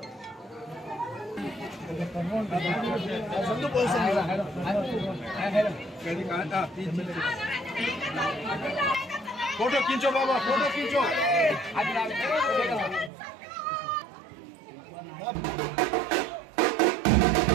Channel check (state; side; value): drops out; left; at 13.1 s